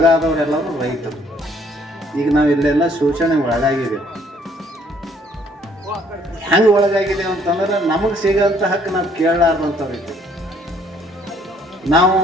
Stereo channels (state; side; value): normal; both; correlation 0.63